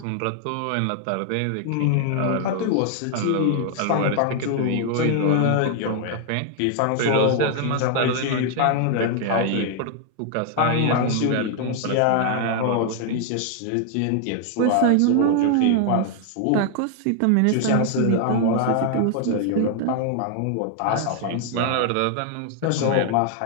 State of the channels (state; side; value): different; both; correlation 0.00